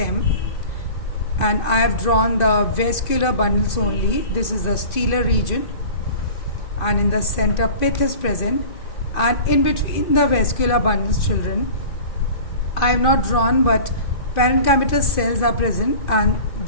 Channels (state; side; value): late; right; 2.5 ms